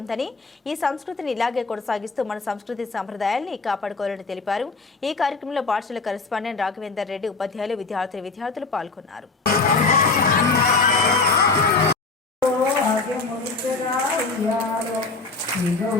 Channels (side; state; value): right; quieter; 4.1 dB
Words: ఉందని, ఈ సంస్కృతిని ఇలాగే కొనసాగిస్తూ మన సంస్కృతి సంప్రదాయాల్ని కాపాడుకోవాలని తెలిపారు. ఈ కార్యక్రమంలో పాఠశాల కరెస్పాండెంట్ రాఘవేందర్ రెడ్డి, ఉపాధ్యాయులు, విద్యార్థులు పాల్గొన్నారు.